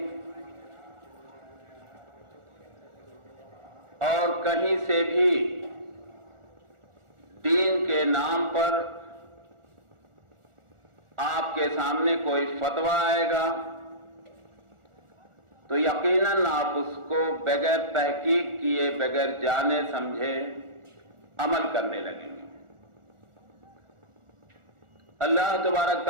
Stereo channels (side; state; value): left; late; 1.4 ms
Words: اور کہیں سے بھی دین کے نام پر آپ کے سامنے کوئی فتویٰ آئے گا تو یقیناً آپ اس کو بغیر تحقیق کیے، بغیر جانے سمجھے عمل کرنے لگیں گے۔ اللہ تبارک